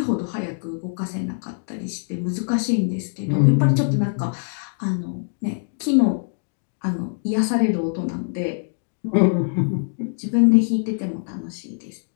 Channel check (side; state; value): right; silent; digital silence